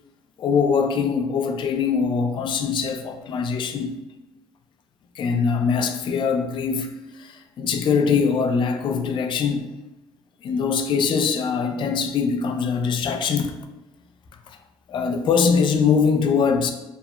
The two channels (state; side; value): quieter; right; 5.5 dB